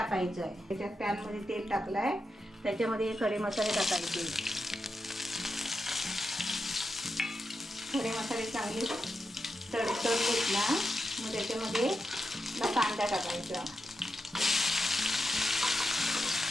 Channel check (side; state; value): both; normal; correlation 0.87